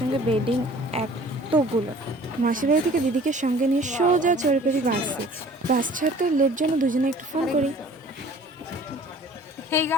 বেডিং এতগুলো। মাসিবাড়ি থেকে দিদিকে সঙ্গে নিয়ে সোজা চড়ে পড়ি বাসে। বাস ছাড়তে লেট জন্য দুজনে একটু ফোন করি। Hey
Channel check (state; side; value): normal; both; correlation 0.49